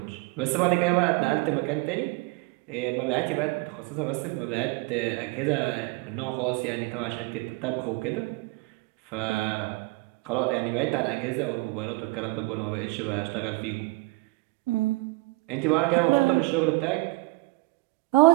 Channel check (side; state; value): left; quieter; 23.6 dB